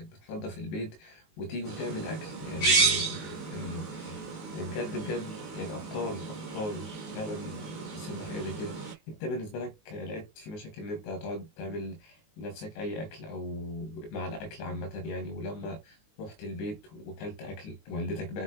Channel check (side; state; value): right; late; 19 ms